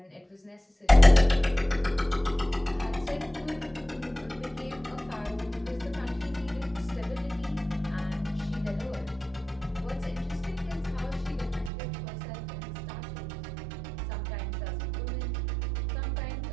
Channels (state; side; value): drops out; left; at 11.7 s